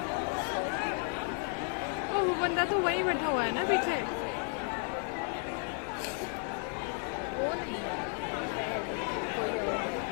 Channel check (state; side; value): quieter; right; 39.5 dB